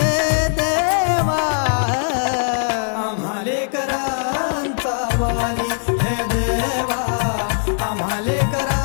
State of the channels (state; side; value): silent; right; digital silence